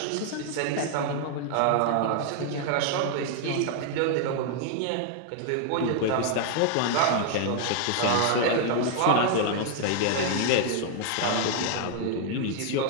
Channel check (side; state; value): both; different; correlation 0.00